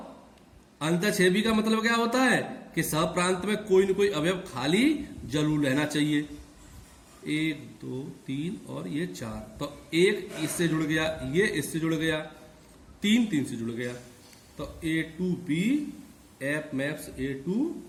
अंतःक्षेपी का मतलब क्या होता है कि सहप्रांत में कोई न कोई अवयव खाली जरूर रहना चाहिए। 1 2 3 और ये 4, तो 1 इससे जुड़ गया, ये इससे जुड़ गया, 3 3 से जुड़ गया, तो A to B F maps A to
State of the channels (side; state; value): both; identical; correlation 1.00